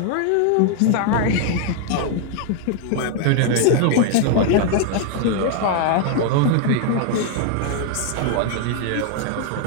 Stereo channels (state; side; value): different; both; correlation 0.00